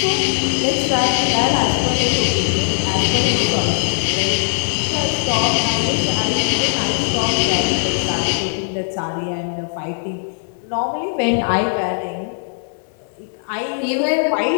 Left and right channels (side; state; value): right; silent; digital silence